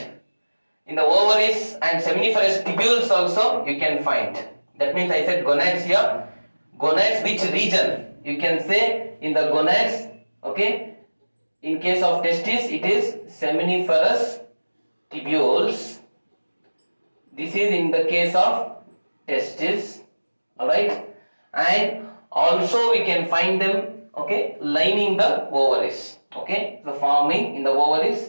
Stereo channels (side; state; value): both; inverted; correlation -1.00